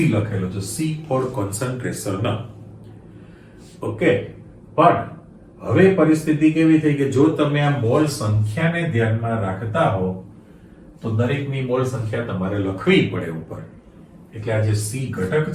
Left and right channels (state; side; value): identical; both; correlation 1.00